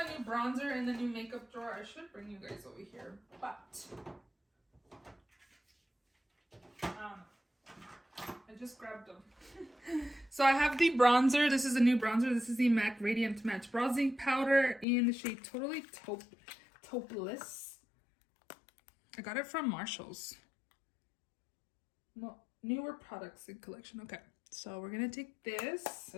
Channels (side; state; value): right; drops out; at 14.9 s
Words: a new bronzer in the new makeup drawer. I should bring you guys over here, but I just grabbed them. So I have the bronzer. This is a new bronzer. This is the MAC Radiant Match Bronzing Powder in the shade Totally Topeless. I got it from Marshall's. No, newer products in collection. Okay, so we're gonna take this.